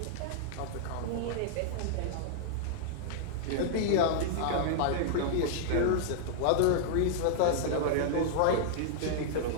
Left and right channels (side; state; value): both; different; correlation -0.01